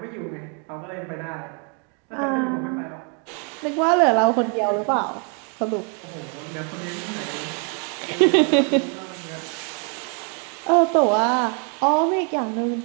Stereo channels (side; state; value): left; quieter; 38.5 dB